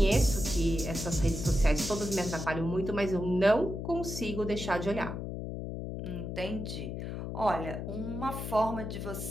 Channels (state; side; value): noise; left; hum, 5 dB below the sound